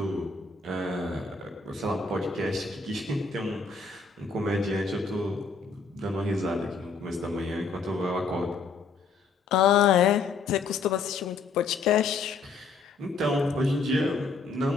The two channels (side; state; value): right; quieter; 4.4 dB